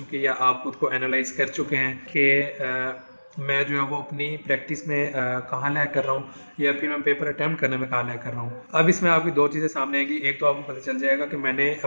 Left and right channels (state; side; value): inverted; both; correlation -1.00